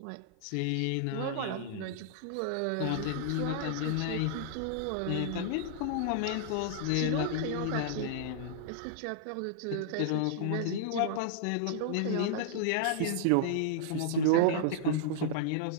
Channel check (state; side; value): different; both; correlation -0.01